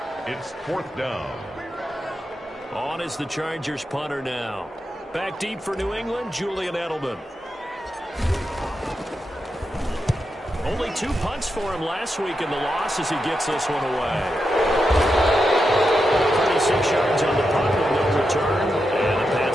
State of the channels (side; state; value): both; normal; correlation 0.87